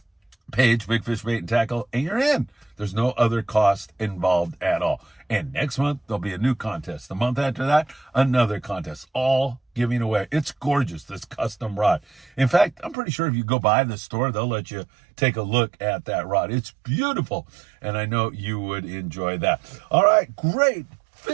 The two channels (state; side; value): drops out; left; at 13.0 s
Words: page, Big Fish Bait and Tackle, and you're in. There's no other cost involved at all. And next month, there'll be a new contest. The month after that, another contest, all giving away. It's gorgeous, this custom rod. In fact, I'm pretty sure if you go by the store, they'll let you take a look at that rod. It's beautiful, and I know you would enjoy that. All right, great